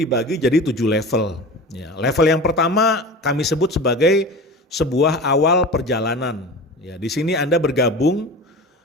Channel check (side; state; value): both; normal; correlation 0.33